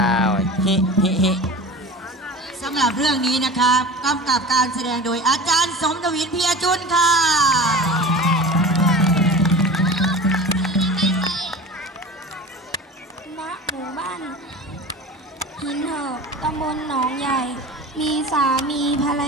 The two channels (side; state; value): both; normal; correlation 0.36